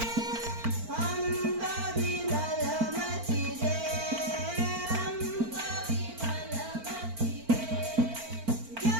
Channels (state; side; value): late; left; 4.4 ms